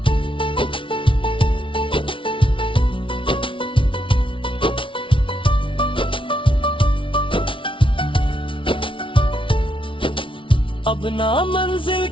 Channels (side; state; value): right; late; 0.25 ms